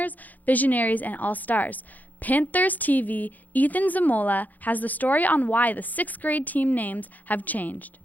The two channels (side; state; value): right; late; 0.082 ms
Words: Visionaries, and All-Stars. Panthers TV, Ethan Zamola, has the story on why the 6th grade team names have changed.